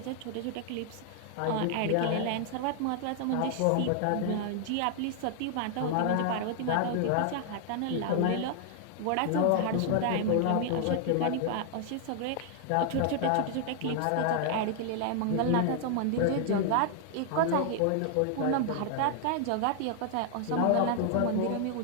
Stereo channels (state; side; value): different; both; correlation 0.00